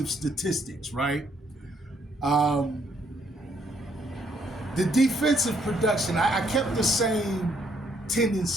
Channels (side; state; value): both; normal; correlation 0.70